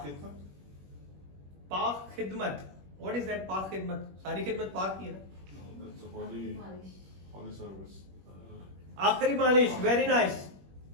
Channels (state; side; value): late; left; 21 ms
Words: खिदमत. व्हाट इज दैट पाक खिदमत? सारी खिदमत पाक की है ना? आखिरी मालिश. Very nice.